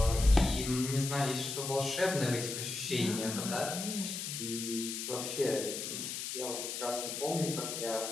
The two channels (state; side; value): noise; left; hiss, 5 dB below the sound